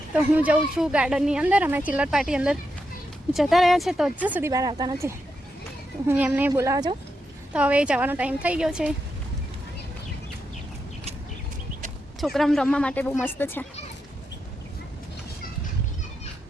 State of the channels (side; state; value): both; normal; correlation 0.85